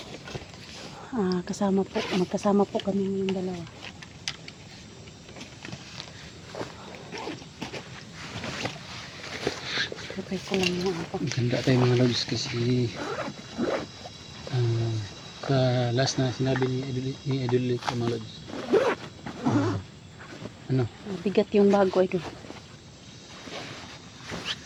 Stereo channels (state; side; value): identical; both; correlation 1.00